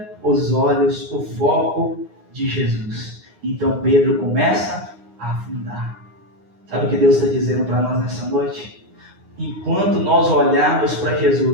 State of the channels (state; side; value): late; left; 9.6 ms